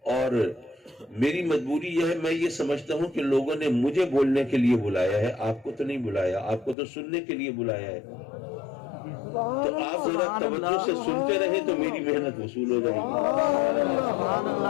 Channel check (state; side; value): drops out; right; at 6.8 s